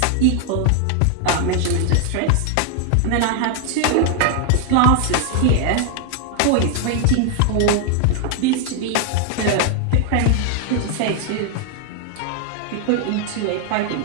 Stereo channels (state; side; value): different; both; correlation 0.00